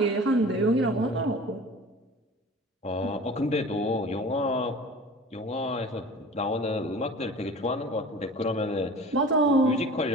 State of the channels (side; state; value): both; normal; correlation 0.40